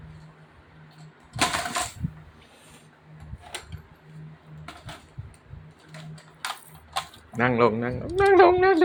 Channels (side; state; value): both; identical; correlation 1.00